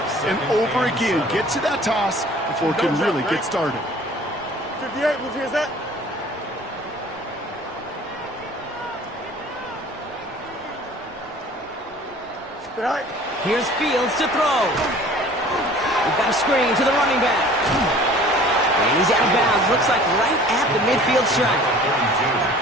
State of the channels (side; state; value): both; normal; correlation 0.48